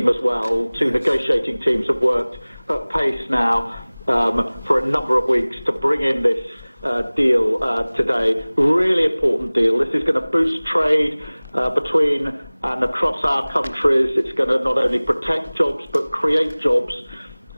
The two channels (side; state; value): both; inverted; correlation -1.00